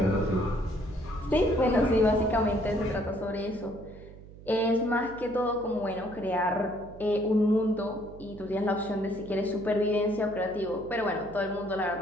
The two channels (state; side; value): noise; right; hum, 18 dB below the sound